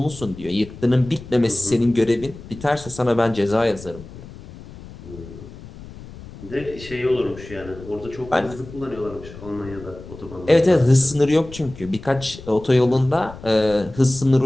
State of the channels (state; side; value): noise; left; rumble, 16 dB below the sound